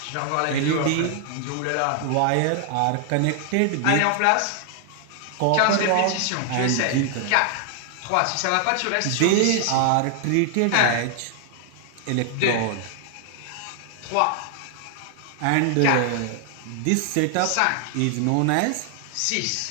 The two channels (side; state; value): both; different; correlation 0.00